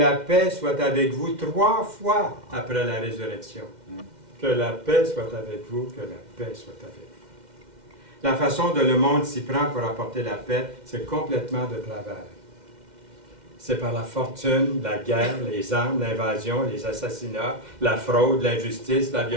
paix soit avec vous 3 fois après la résurrection. Que la paix soit avec vous, que la paix soit avec vous. La façon dont le monde s'y prend pour apporter la paix, c'est complètement de travers. C'est par la fortune, la guerre, les armes, l'invasion, les assassinats, la fraude, l'injustice, la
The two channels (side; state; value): left; late; 2.1 ms